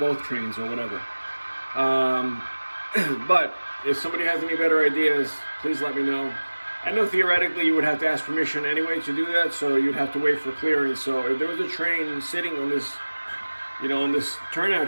trains or whatever. But if somebody has any better ideas, please let me know. I know theoretically you would have to ask permission anyway to do that, so you'd have to wait for clearance. So if there was a train sitting on this, on this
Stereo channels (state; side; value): inverted; both; correlation -1.00